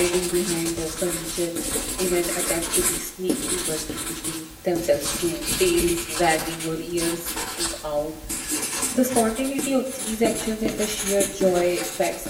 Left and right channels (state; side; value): identical; both; correlation 1.00